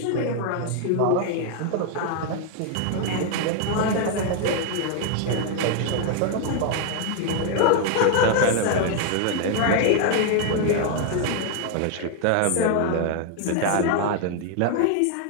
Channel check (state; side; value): different; both; correlation 0.00